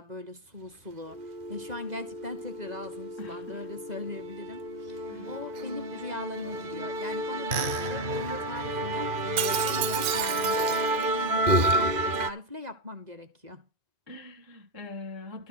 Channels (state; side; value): late; left; 2.4 ms